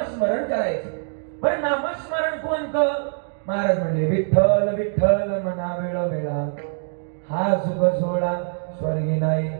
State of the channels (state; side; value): silent; left; digital silence